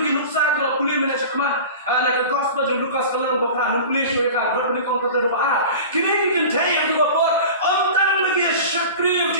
nuksa ko puli mena chakma na ka gospel jong Lukas kalang ba pra no puli jo ka bar ni kong ka do ba kini ki KHRIST ang ba por om tan lagi shakri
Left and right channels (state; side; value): inverted; both; correlation -0.35